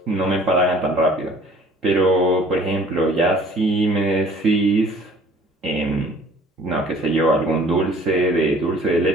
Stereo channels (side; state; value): both; normal; correlation 0.52